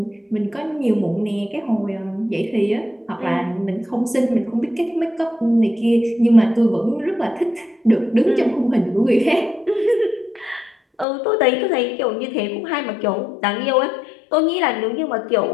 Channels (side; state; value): right; drops out; at 11.1 s